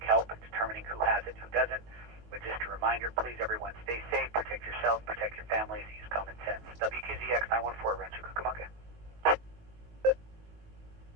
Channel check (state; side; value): late; left; 19 ms